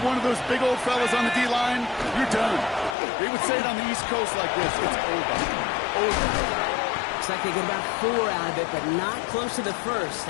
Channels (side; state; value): right; drops out; at 3.0 s